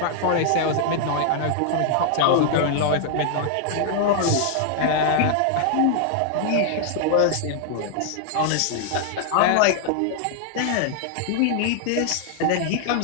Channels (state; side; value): different; both; correlation 0.00